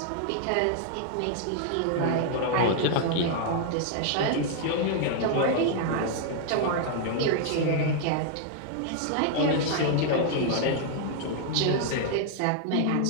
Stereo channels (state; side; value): different; both; correlation 0.00